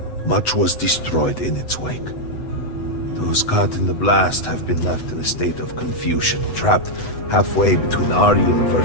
Much was destroyed in its wake. Those caught in the blast have been left in a state of confusion, trapped halfway between our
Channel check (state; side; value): late; right; 8.0 ms